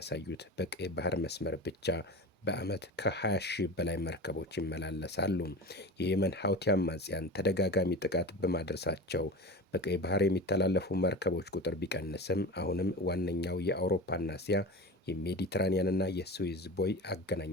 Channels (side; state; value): both; normal; correlation 0.29